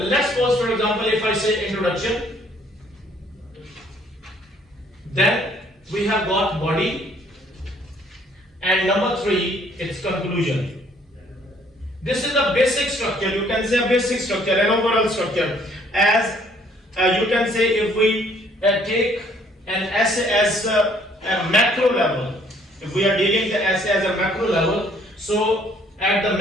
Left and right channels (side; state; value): both; normal; correlation 0.62